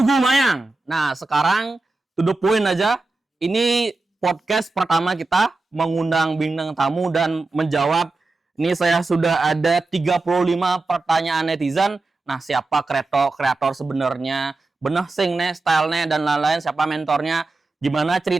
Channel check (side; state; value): left; quieter; 3.4 dB